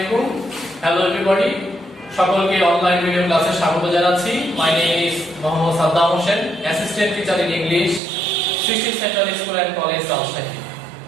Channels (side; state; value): left; drops out; at 8.0 s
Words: Hello everybody, সকলকে অনলাইন ভিডিও ক্লাসে স্বাগত জানাচ্ছি। My name is Mohammad Saddam Hossain, assistant teacher in English, Shri central school and college Rajshahi.